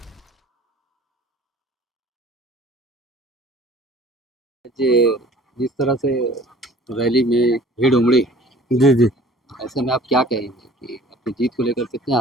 जिस तरह से रैली में भीड़ उमड़ी, जी जी, ऐसे में आप क्या कहेंगे कि अपनी जीत को लेकर कितने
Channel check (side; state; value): both; normal; correlation 0.50